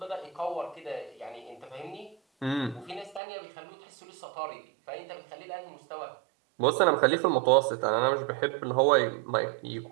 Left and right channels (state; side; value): drops out; left; at 3.2 s